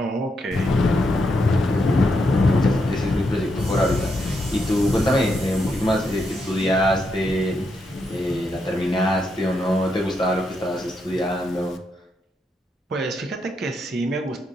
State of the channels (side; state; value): both; normal; correlation 0.81